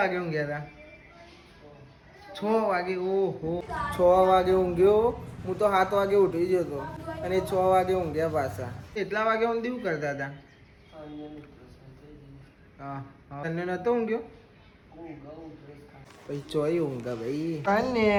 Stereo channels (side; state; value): both; identical; correlation 1.00